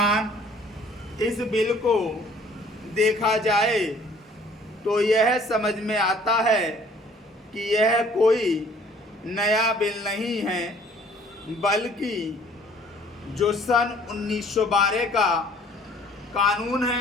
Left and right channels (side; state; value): both; normal; correlation 0.56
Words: इस बिल को देखा जाए तो यह समझ में आता है कि यह कोई नया बिल नहीं है, बल्कि जो सन 1912 का कानून